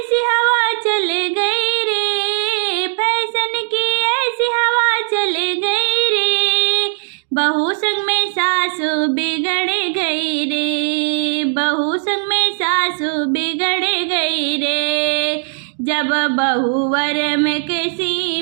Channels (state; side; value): silent; left; digital silence